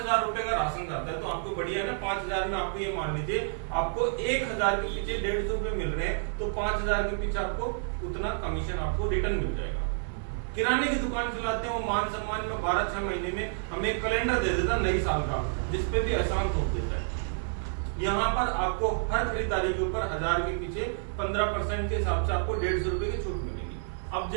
रुपए का राशन जाता है तो आपको बढ़िया है ना। 5,000 में आपको ये मान लीजिए आपको 1,000 के पीछे 150 रुपए मिल रहे हैं, तो 5,000 के पीछे आपको उतना कमीशन आपको रिटर्न मिल जाएगा। किराने की दुकान चलाते हैं, वो मान सम्मान में 12-6 महीने में हमें एक कैलेंडर दे देता नई साल का, जिसपे भी एहसान थोप देता है। यहाँ पर आपको हर खरीदारी के ऊपर 1000 के पीछे 15% के हिसाब से आपको 150 रुपए की छूट मिलेगी। अब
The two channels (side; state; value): left; silent; digital silence